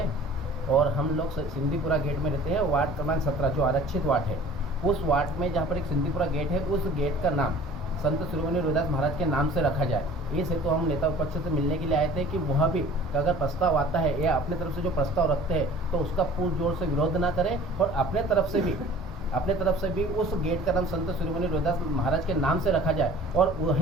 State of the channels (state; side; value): normal; both; correlation 0.46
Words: और हम लोग सिंधीपुरा गेट में रहते हैं। वार्ड क्रमांक 17 जो आरक्षित वार्ड है, उस वार्ड में जहाँ पर एक सिंधीपुरा गेट है, उस गेट का नाम संत शिरोमणि रविदास महाराज के नाम से रखा जाए। इस हेतु हम नेता विपक्ष से मिलने के लिए आए थे कि वह भी अगर प्रस्ताव आता है या अपने तरफ से जो प्रस्ताव रखते हैं तो उसका पूर्ण जोर से विरोध ना करें और अपने तरफ से भी उस गेट का नाम संत शिरोमणि रविदास महाराज के नाम से रखा जाए और